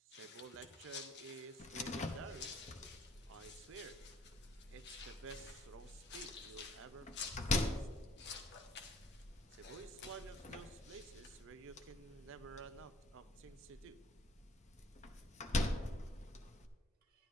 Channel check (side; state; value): both; normal; correlation 0.60